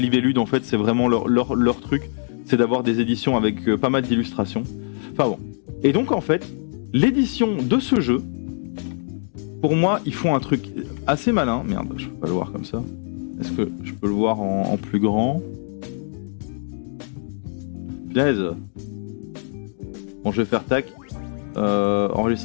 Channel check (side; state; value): right; silent; digital silence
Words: Libellude, en fait, c'est vraiment leur truc, c'est d'avoir des éditions avec pas mal d'illustrations. Enfin bon. Et donc, en fait, l'édition de ce jeu, pour moi, ils font un truc assez malin. Merde, je peux pas le voir comme ça. Est-ce que je peux le voir en plus grand? Punaise. Bon, je vais faire tac.